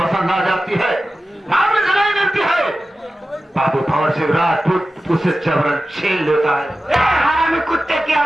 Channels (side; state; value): both; normal; correlation 0.94